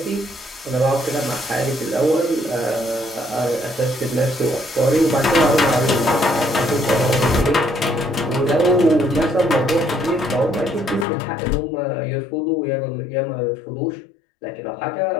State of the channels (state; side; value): drops out; right; at 11.1 s